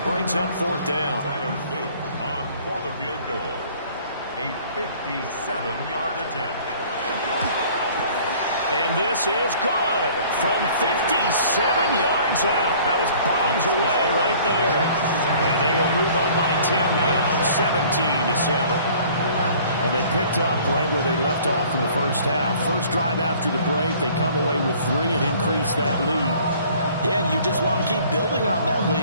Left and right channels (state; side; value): inverted; both; correlation -0.52